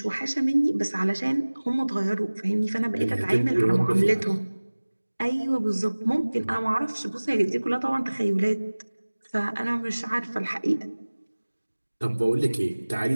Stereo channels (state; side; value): inverted; both; correlation -1.00